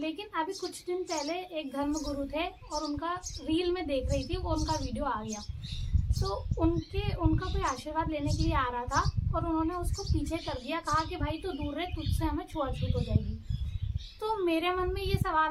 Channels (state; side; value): identical; both; correlation 1.00